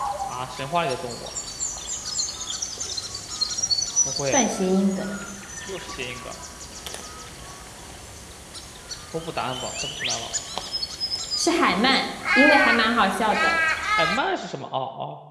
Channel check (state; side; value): identical; both; correlation 1.00